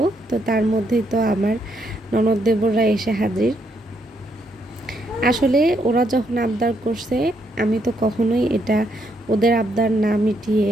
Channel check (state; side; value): normal; both; correlation 0.75